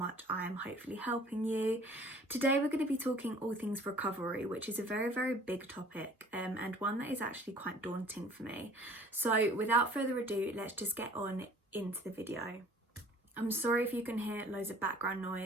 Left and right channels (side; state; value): both; normal; correlation 0.51